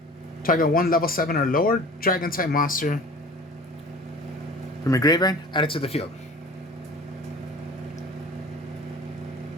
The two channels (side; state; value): both; normal; correlation 0.42